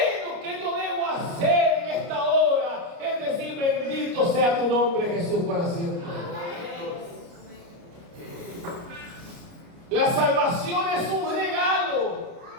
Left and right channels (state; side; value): late; left; 29 ms